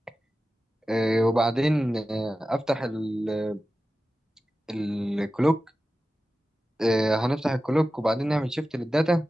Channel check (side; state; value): both; normal; correlation 0.94